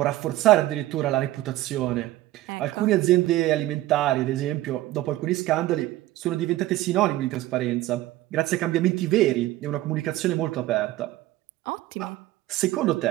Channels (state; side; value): quieter; left; 16.1 dB